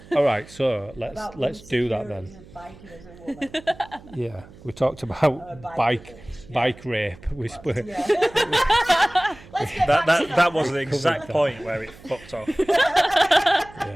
All right, so about let's do that then. insecurities of biking as a woman. Yeah, we talked about bike rape. We spoke. Yeah. Let's get back to That was the exact point where it fucked off.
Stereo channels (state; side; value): noise; right; hum, 21 dB below the sound